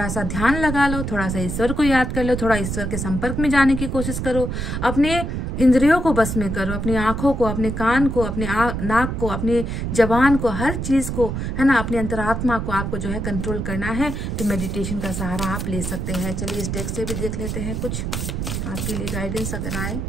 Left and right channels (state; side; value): noise; right; rumble, 3 dB below the sound